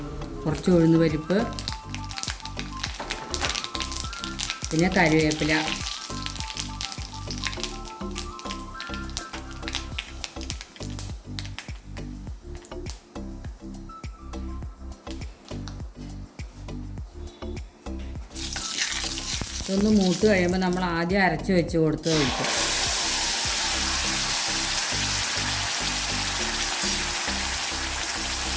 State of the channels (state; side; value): identical; both; correlation 1.00